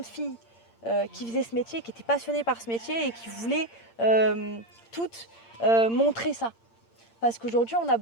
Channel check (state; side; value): late; right; 8.7 ms